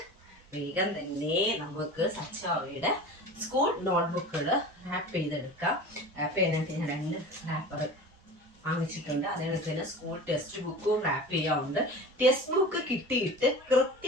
വേഗം തന്നെ സച്ചാവയുടെ സ്കൂൾ നോട്ട്ബുക്കുകൾ റാപ്പ് ചെയ്തെടുക്കാം. റാപ്പ് ചെയ്യാനായിട്ട് ഞാൻ 2 റാപ്പർ വാങ്ങിച്ചിട്ടുണ്ട്. അതേപോലെ തന്നെ സ്കൂൾ ടെക്സ്റ്റ് ബുക്കും റാപ്പ് ചെയ്യാറുണ്ട്. ടെക്സ്റ്റ് ബുക്ക് കിട്ടിയിട്ട്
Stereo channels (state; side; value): normal; both; correlation 0.35